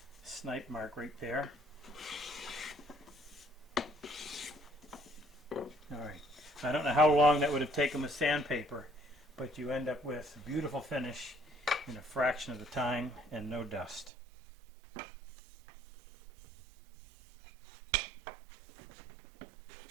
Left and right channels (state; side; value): drops out; left; at 14.1 s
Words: snipe mark right there. Alright, I don't know how long that would have taken with sandpaper, but you end up with a beautiful finish in a fraction of the time and no dust.